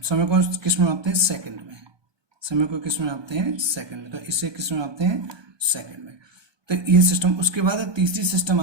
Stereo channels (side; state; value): left; late; 1.2 ms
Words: समय को किस में मापते हैं? सेकंड में। समय को किस में मापते हैं? सेकंड में। तो इसे किस में मापते हैं? सेकंड में। तो ये सिस्टम। उसके बाद तीसरी सिस्टम